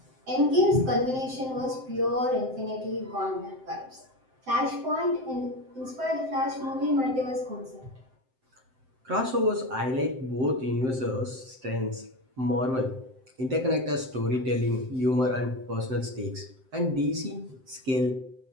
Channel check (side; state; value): left; late; 7.7 ms